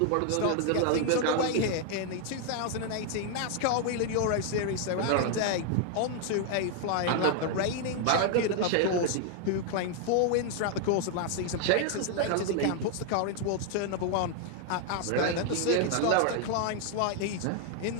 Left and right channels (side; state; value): both; different; correlation 0.00